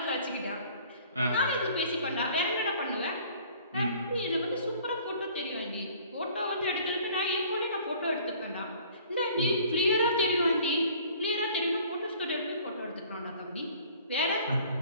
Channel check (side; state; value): both; inverted; correlation -0.53